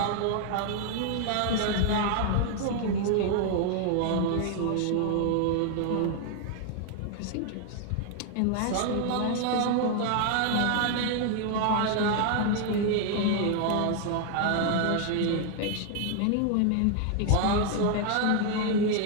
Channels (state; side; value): different; both; correlation 0.00